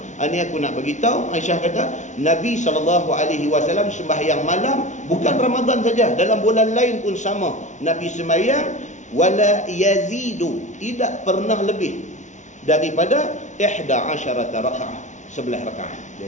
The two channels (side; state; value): right; late; 0.35 ms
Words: Ini aku nak bagi tahu. Aisyah kata, Nabi SAW sembahyang malam bukan Ramadan saja, dalam bulan lain pun sama. Nabi sembahyang wala yazidu, tidak pernah lebih daripada 11 rakaat, 11 rakaat